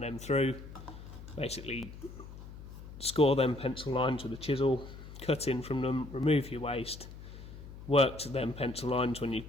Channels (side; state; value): left; noise; hum, 14 dB below the sound